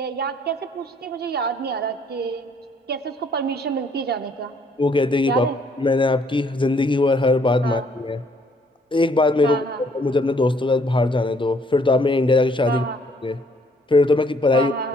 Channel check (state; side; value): normal; both; correlation 0.65